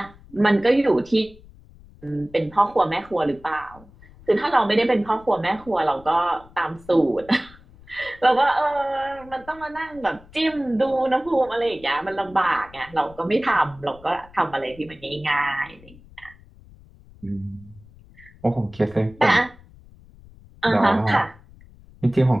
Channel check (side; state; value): left; noise; rumble, 23 dB below the sound